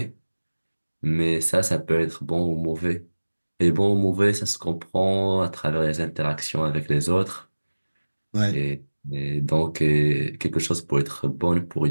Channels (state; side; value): inverted; both; correlation -1.00